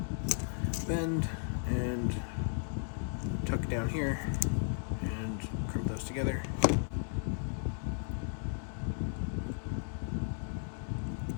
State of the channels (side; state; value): right; silent; 54 dB below the other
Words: bend, and tuck down here and crimp those together.